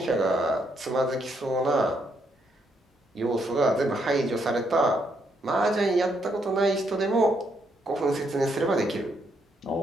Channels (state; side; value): normal; both; correlation 0.75